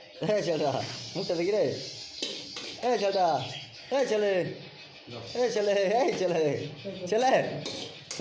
ছেলেটা মুখটা দেখি রে। এই ছেলেটা, এই ছেলে ছেলে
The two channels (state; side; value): identical; both; correlation 1.00